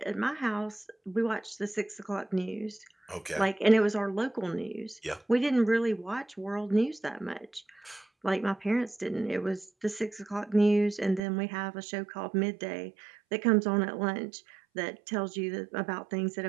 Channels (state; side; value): drops out; left; at 11.2 s